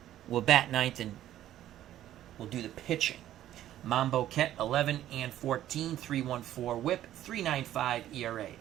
will bat 9th and will do the pitching. Mambo Ket 11-14, 3.14 whip, 3.95 ERA.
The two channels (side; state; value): left; quieter; 12.5 dB